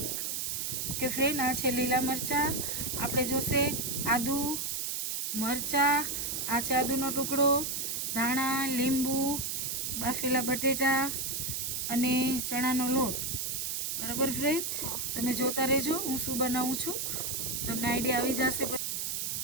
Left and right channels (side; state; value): right; noise; hiss, 1 dB below the sound